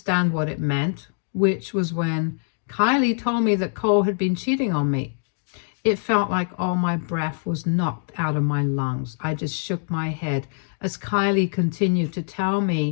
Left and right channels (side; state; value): right; silent; digital silence